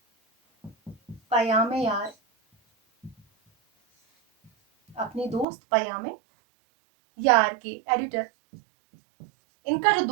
پیام یار، اپنے دوست پیام یار کے ایڈیٹر، ان کا جو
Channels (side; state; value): left; drops out; at 5.5 s